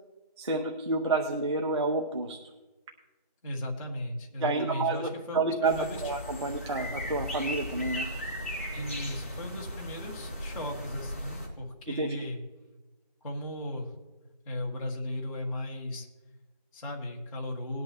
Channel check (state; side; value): inverted; both; correlation -0.31